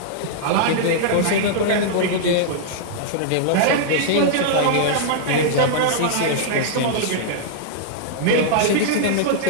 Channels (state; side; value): different; both; correlation -0.01